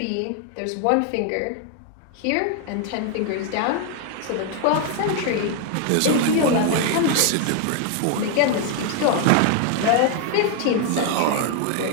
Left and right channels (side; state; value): both; different; correlation 0.00